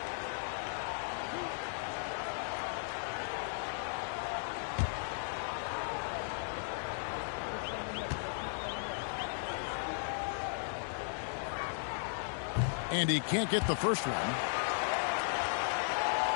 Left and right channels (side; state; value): right; silent; digital silence